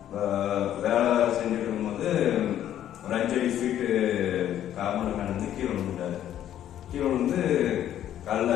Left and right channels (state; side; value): quieter; right; 11.3 dB